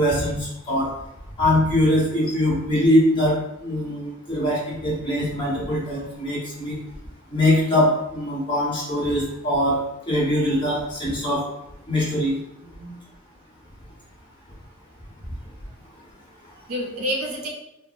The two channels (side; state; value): both; normal; correlation 0.47